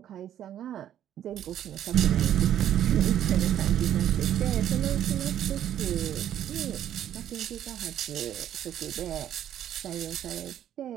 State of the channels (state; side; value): quieter; left; 10.9 dB